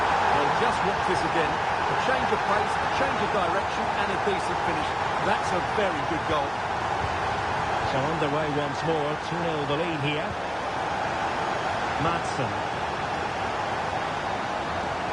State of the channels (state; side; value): identical; both; correlation 1.00